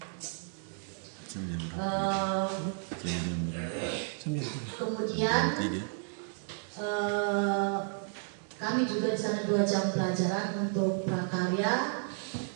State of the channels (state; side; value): silent; left; 56 dB below the other